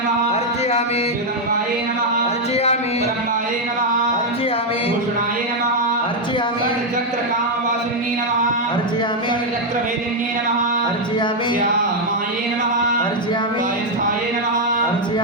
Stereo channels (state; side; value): normal; both; correlation 0.01